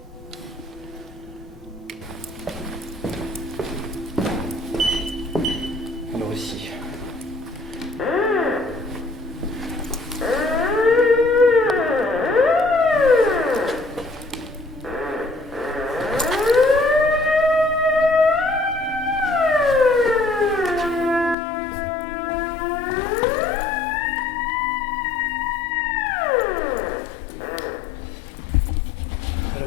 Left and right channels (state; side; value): drops out; right; at 21.4 s